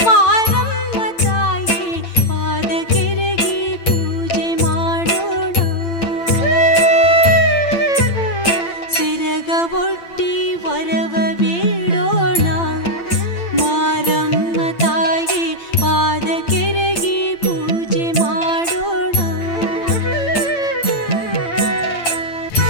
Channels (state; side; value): late; right; 8.8 ms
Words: ಮಾರಮ್ಮ ತಾಯಿ ಪಾದ ಕೆರಗಿ ಪೂಜೆ ಮಾಡೋಣ. ಸಿರಗ ಒಟ್ಟಿ ವರವ ಬೇಡೋಣ. ಮಾರಮ್ಮ ತಾಯಿ ಪಾದ ಕೆರಗಿ ಪೂಜೆ ಮಾಡೋಣ.